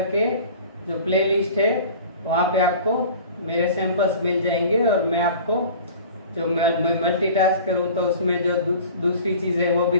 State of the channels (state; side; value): inverted; both; correlation -0.43